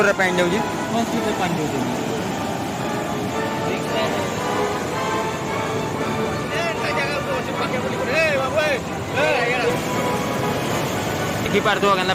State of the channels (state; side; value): identical; both; correlation 1.00